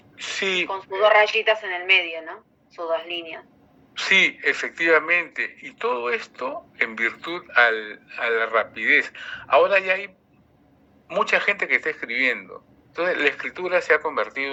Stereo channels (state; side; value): identical; both; correlation 1.00